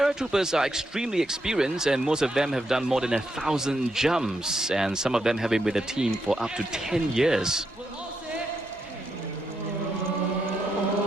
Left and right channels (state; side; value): normal; both; correlation 0.81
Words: are extremely experienced, and most of them have done more than 1,000 jumps, and some of them have been with the team for up to 10 years.